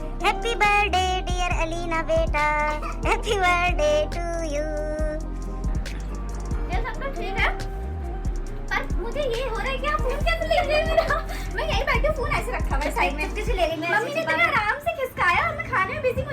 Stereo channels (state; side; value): identical; both; correlation 1.00